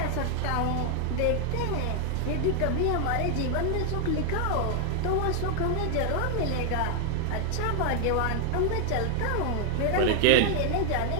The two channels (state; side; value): different; both; correlation 0.00